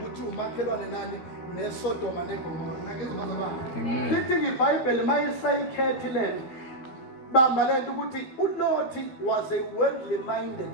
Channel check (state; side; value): late; right; 13 ms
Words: umakhelwane nani neSodoma neGomora. Nangizwa bazalwane. Lithi iBhayibheli mayisayikhetha iland bamba lento ukuthi uLothi was a worldly minded